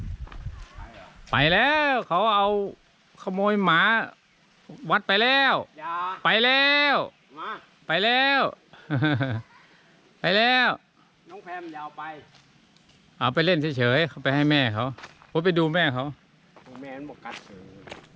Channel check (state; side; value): identical; both; correlation 1.00